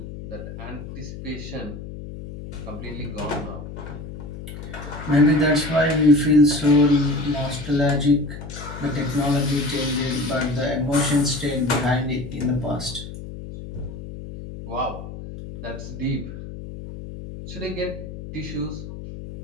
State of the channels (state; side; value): noise; left; hum, 11 dB below the sound